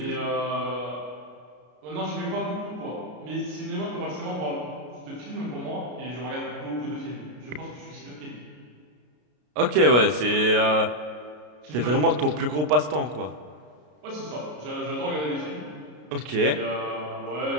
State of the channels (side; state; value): left; late; 33 ms